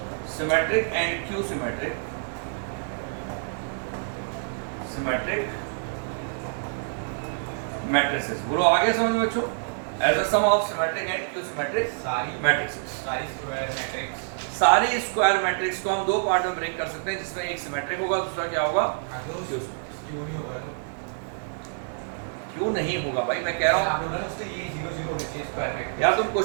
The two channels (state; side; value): silent; left; digital silence